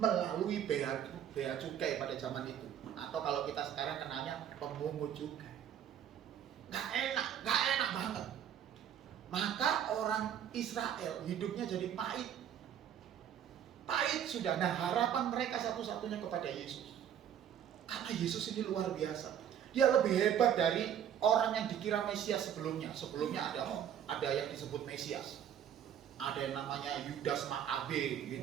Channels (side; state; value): left; quieter; 9.5 dB